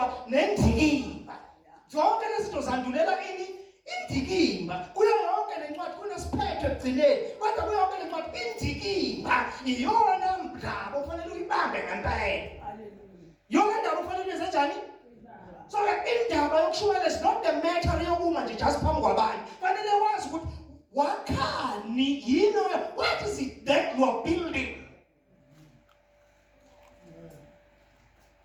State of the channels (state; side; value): identical; both; correlation 1.00